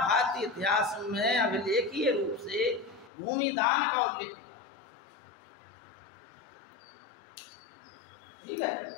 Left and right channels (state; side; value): drops out; right; at 3.1 s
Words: इतिहास में अभिलेखीय रूप से भूमि दान का उल्लेख हुआ। ठीक है,